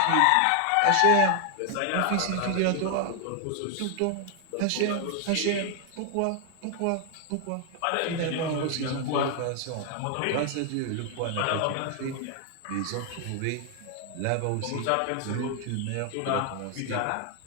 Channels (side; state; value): both; different; correlation 0.00